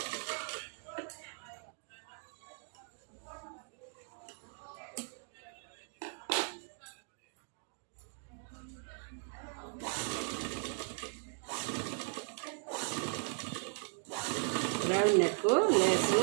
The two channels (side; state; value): left; silent; 53 dB below the other